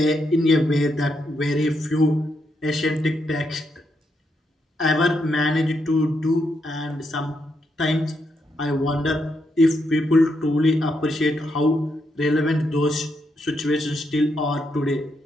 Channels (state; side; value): normal; both; correlation 0.80